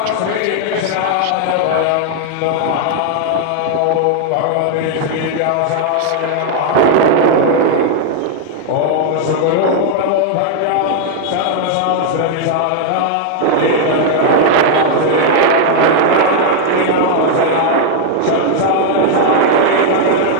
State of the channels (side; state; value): both; different; correlation 0.00